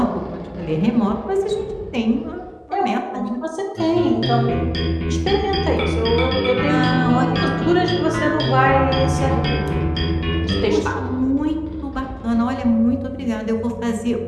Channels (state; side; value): identical; both; correlation 1.00